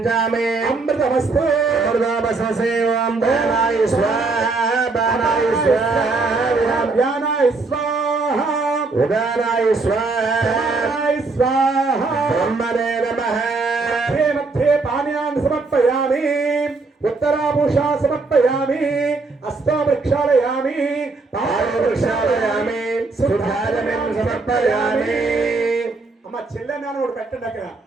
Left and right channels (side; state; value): left; quieter; 3.8 dB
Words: అమృతమస్తు అమృతమస్తసేవం బాణాయ స్వాహా బాణాయ స్వాహా వ్యానాయ స్వాహా ఉదానాయ స్వాహా బ్రహ్మణే నమః. मध्ये पानीयान् समर्पयामि. उत्तराभूषा समर्पयामि. हस्तो प्रक्षालयामि. पादौ प्रक्षालयामि. शुद्धाजलं समर्पयामि. అమ్మ చిల్లనాను ఒకటి పెట్టండి. అక్కడ